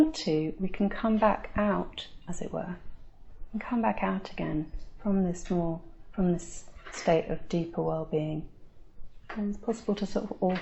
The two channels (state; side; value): identical; both; correlation 1.00